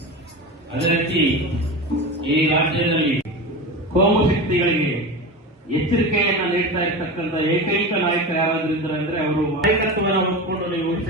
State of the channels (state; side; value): normal; both; correlation 0.26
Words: ಅದೇ ರೀತಿ ಈ ರಾಜ್ಯದಲ್ಲಿ ಕೋಮು ಶಕ್ತಿಗಳಿಗೆ ಎಚ್ಚರಿಕೆಯನ್ನ ನೀಡ್ತಾ ಇರ್ತಕ್ಕಂಥ ಏಕೈಕ ನಾಯಕ ಯಾರಾದ್ರೂ ಇದ್ದಾರೆ ಅಂದ್ರೆ ಅವರು ನಾಯಕತ್ವವನ್ನು ಹೊಂದ್ಕೊಂಡು ನೀವು ಉಳಿದ